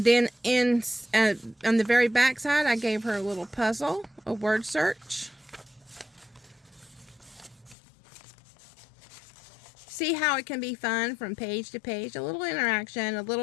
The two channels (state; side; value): drops out; right; at 7.8 s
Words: then on the very back side, I gave her a little puzzle, a word search. See how it can be fun from page to page. A little interaction, a